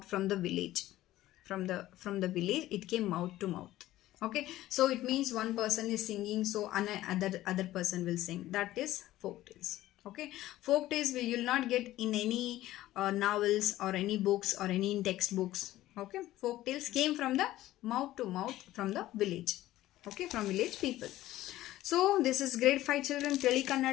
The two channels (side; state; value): right; quieter; 15.2 dB